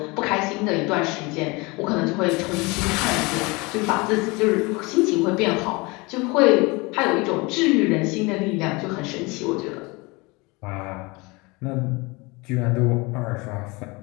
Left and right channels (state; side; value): quieter; right; 25.6 dB